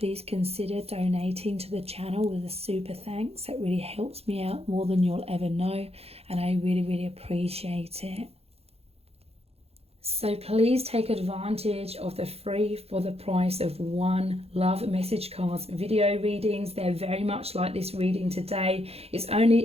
consider donating to the channel with a super thanks. That really helps me out more than you'll ever know, and I really, really appreciate it. So please take advantage of the free for the price of one love message cards video readings. They're very much like this reading today. It's only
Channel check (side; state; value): left; late; 0.29 ms